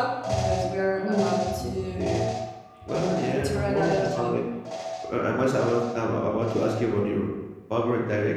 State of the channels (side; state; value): both; identical; correlation 1.00